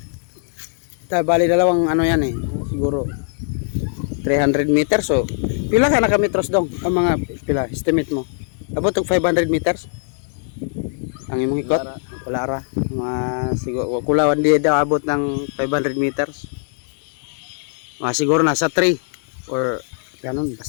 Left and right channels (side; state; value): right; silent; digital silence